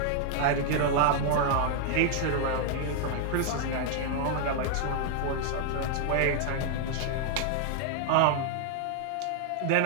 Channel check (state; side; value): different; both; correlation 0.00